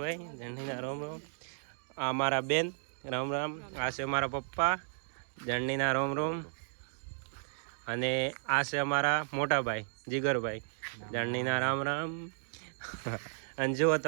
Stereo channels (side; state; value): left; silent; digital silence